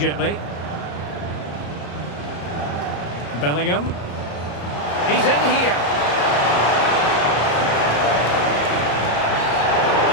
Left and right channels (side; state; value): right; late; 34 ms